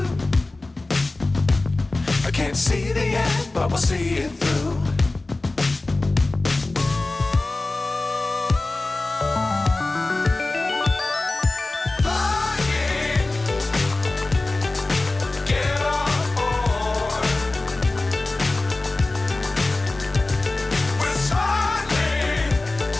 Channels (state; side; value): quieter; right; 3.1 dB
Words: I can't see the end, but we'll see it through.